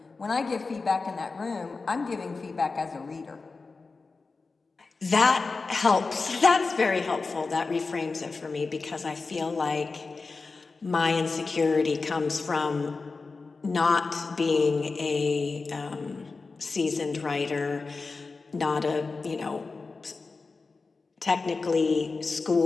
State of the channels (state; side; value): quieter; right; 4.1 dB